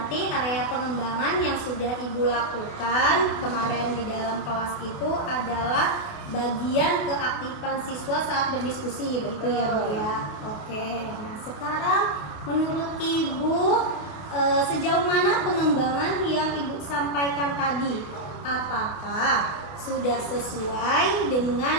area pengembangan yang sudah Ibu lakukan kemarin di dalam kelas itu adalah bagian keaktifan siswa saat berdiskusi, begitu ya Bu ya. Oke. Nah, sekarang menurut Ibu sejauh mana pengembangan yang Ibu sampaikan tadi? Apakah sudah sesuai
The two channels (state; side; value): late; right; 28 ms